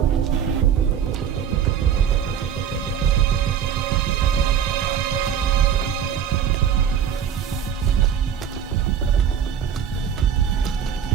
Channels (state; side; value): quieter; left; 8.6 dB